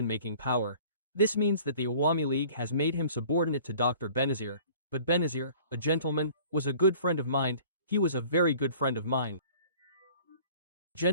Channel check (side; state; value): both; inverted; correlation -0.49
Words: power, this means that the Awami League has made him subordinate to Dr. Benazir, but Benazir, a gentleman, was a good friend of mine. He was a very good friend of mine.